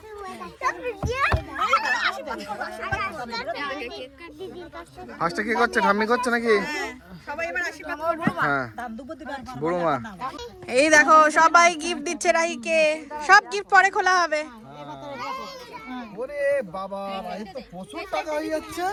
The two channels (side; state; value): both; identical; correlation 1.00